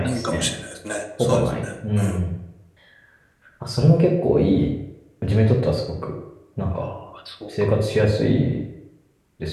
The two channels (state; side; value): identical; both; correlation 1.00